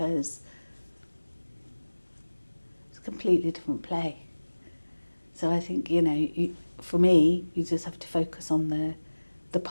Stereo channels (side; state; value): both; inverted; correlation -1.00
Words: it's a completely different play. So I think, for me, you just have to focus on the